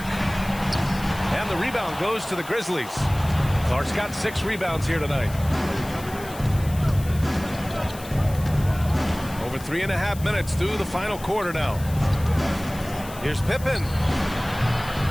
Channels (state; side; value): noise; left; hiss, 17 dB below the sound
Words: And the rebound goes to the Grizzlies. Clark's got 6 rebounds here tonight. Over 3.5 minutes through the final quarter now. Here's Pippen.